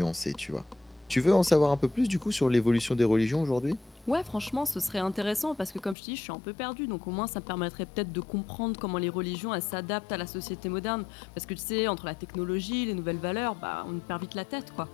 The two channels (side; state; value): right; drops out; at 6.0 s